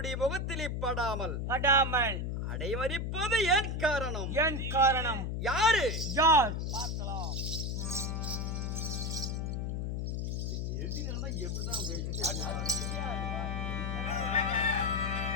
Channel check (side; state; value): left; noise; hum, 1 dB below the sound